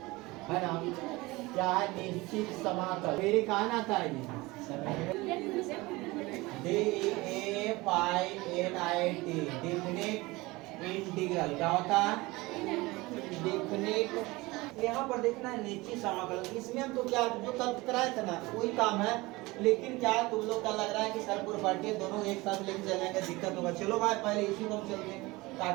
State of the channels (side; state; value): left; quieter; 21.8 dB